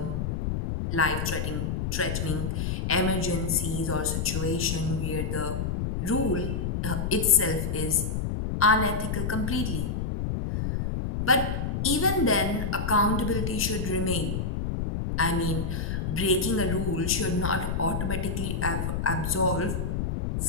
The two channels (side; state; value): left; noise; rumble, 1 dB below the sound